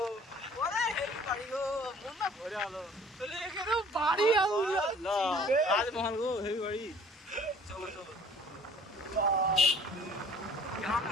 ওরে হেভি বাড়ি গো, মন না ভরে আলো তাহলে এখানে বাড়ি আলো রাজমহল গো হেভি বাড়ি। চলো চলো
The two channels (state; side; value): normal; both; correlation 0.51